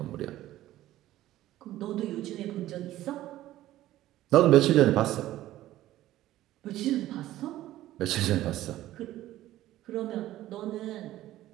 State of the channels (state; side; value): quieter; left; 14.7 dB